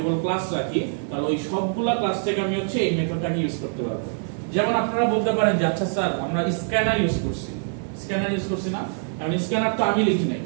ক্লাস রাখি, তাহলে ওই সবগুলা ক্লাস থেকে আমি হচ্ছে এই মেথডটাকে ইউজ করতে পারবো। যেমন আপনারা বলতে পারেন যে আচ্ছা স্যার আমরা স্ক্যানার ইউজ করছি না, কারণ স্ক্যানার তো আমি লিখি নাই,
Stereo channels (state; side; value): silent; left; 58 dB below the other